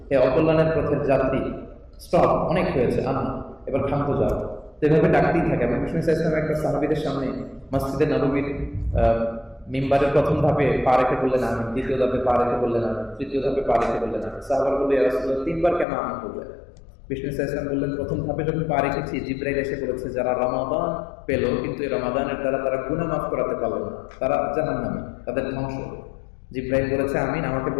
হে অকল্যাণের পথের যাত্রী স্টপ, অনেক হয়েছে, এবার ক্ষান্ত যাও। এভাবে ডাকতেই থাকে। এবং বিষ্ণু ইসলাম একটা সাহাবীদের সামনে মসজিদে নববীর মিম্বারের প্রথম ধাপে পা রেখে বললেন আমিন, দ্বিতীয় ধাপে পা রেখে বললেন আমিন, তৃতীয় ধাপে পা রেখে বললেন আমিন। সাহাবারা বললেন, ইয়া রাসূলুল্লাহ, তিনবার কেন আমিন বললেন? বিষ্ণু ইসলাম বললেন, প্রথম ধাপে যখন পা রেখেছি, জিবরাইল এসে বলেছে যারা রমাদান পেল কিন্তু এই রমাদানের দ্বারা তারা গুনাহ মাফ করাতে পারল না, তারা জাহান্নামী, তাদের ধ্বংস। জিবরাইল বলেছে আমিন, আমাকে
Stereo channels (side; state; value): right; drops out; at 15.9 s